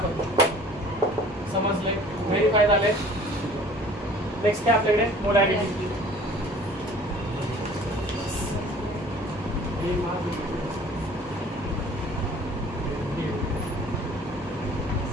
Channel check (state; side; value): normal; both; correlation 0.50